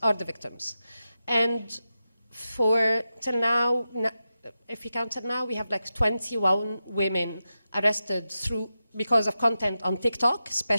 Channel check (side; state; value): both; inverted; correlation -0.91